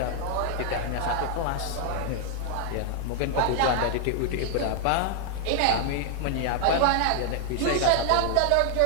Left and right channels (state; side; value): different; both; correlation 0.00